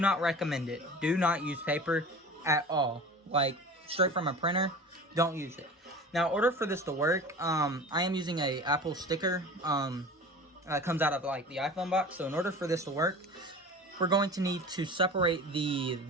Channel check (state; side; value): normal; both; correlation 0.37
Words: recommend it. Do not use paper at all. Like, straight from a printer, don't use it. Now, in order for this to work, I am using a Apple sticker. It comes out of, like, the iPhone box. So, in order for this to work, we're going to need to separate the